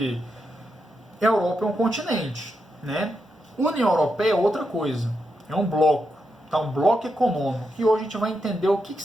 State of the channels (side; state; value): both; normal; correlation 0.85